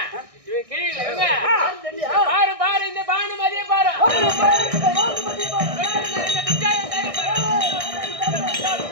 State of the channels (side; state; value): left; late; 1.6 ms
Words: பாரு பாரு இந்த பானு மாதிரியே பாரு